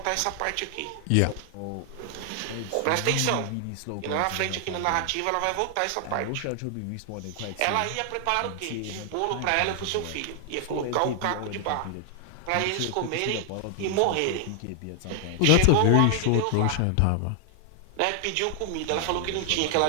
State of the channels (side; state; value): both; different; correlation 0.00